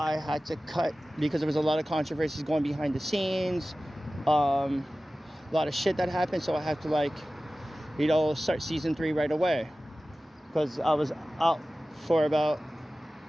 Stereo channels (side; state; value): both; normal; correlation 0.96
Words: had to cut, because there was a lot of controversies going behind the scenes. A lot of shit that happened, so I had to start season 3 right away. Because I was out for about